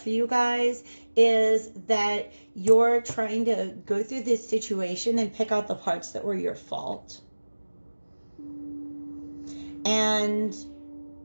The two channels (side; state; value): both; inverted; correlation -1.00